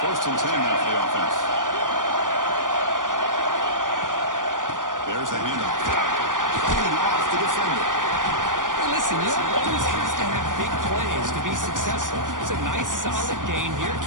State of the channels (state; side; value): late; left; 0.88 ms